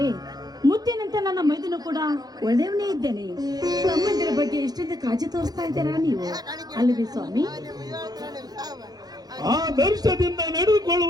ಮುತ್ತಿನಂತ ನನ್ನ ಮೈದನು ಕೂಡ ಒಳ್ಳೆಯವನೇ ಇದ್ದೇನೆ. ತಮ್ಮಂದಿರ ಬಗ್ಗೆ ಎಷ್ಟೊಂದು ಕಾಳಜಿ ತೋರಿಸ್ತಾ ಇದ್ದೀರಾ ನೀವು, ಅಲ್ಲವೇ ಸ್ವಾಮಿ? ಆ ದರ್ಶದಿಂದ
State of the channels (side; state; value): left; late; 0.19 ms